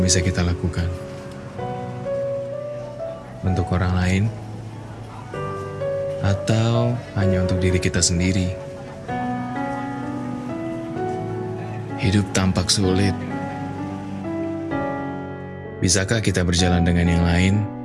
bisa kita lakukan? Untuk orang lain? Atau hanya untuk diri kita sendiri? Hidup tampak sulit. Bisakah kita berjalan dengan yang lain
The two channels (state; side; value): identical; both; correlation 1.00